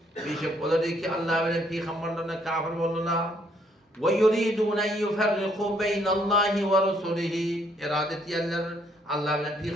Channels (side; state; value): both; normal; correlation 0.68